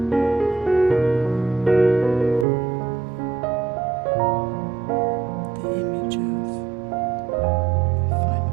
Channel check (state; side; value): drops out; left; at 2.5 s